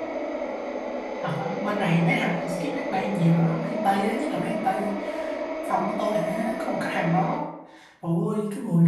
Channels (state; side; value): identical; both; correlation 1.00